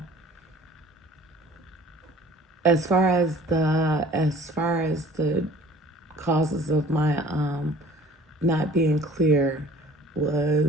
as far as the causes of my not being clear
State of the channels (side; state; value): both; normal; correlation 0.49